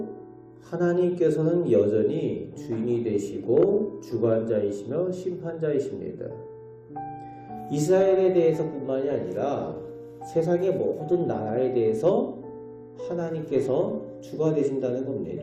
하나님께서는 여전히 주인이 되시고 주관자이시며 심판자이십니다. 이스라엘에 대해서뿐만이 아니라 세상의 모든 나라에 대해서 하나님께서 주가 되신다는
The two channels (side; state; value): both; identical; correlation 1.00